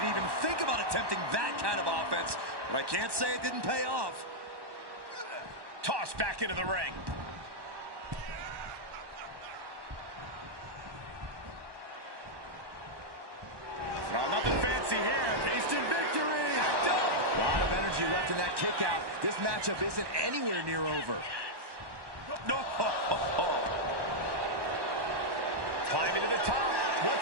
even think about attempting that kind of offense. But I can't say it didn't pay off. Tossed back into the ring. No, nothing fancy here. Instant victory. Backed up. A lot of energy left in that kick out. This matchup isn't anywhere near over. No. Climbing to the top.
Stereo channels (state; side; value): late; left; 1.1 ms